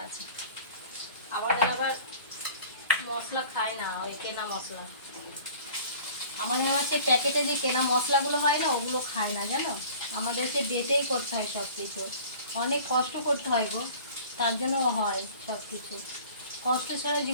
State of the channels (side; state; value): both; inverted; correlation -0.47